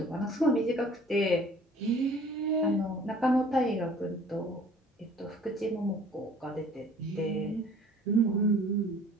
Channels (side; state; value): both; normal; correlation 0.52